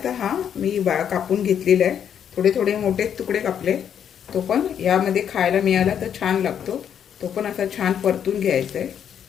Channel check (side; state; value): right; quieter; 8.7 dB